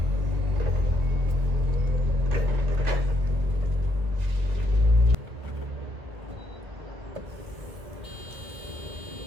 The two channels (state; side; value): late; left; 1.7 ms